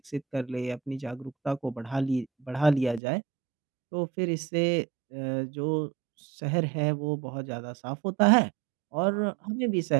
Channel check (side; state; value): left; drops out; at 3.0 s